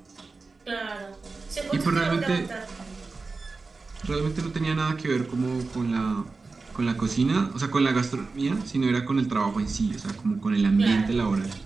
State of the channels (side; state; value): left; quieter; 4.0 dB